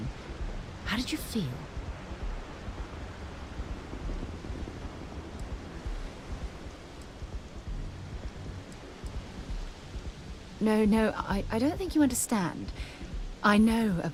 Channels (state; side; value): identical; both; correlation 1.00